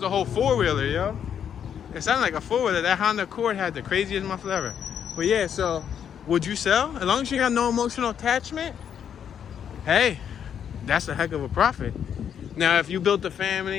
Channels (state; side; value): quieter; right; 8.5 dB